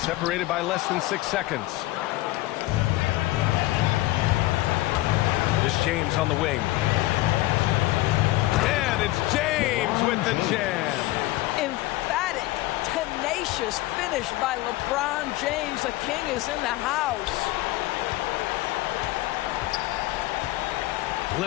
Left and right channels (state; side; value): quieter; right; 18.2 dB